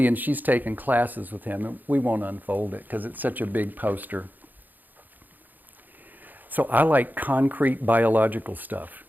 she's taken classes with him, and we won't unfold it because it's such a big poster. So I like concrete biological stuff.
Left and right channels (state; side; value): late; left; 0.085 ms